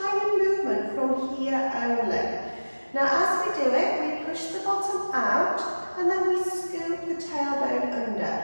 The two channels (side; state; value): both; inverted; correlation -1.00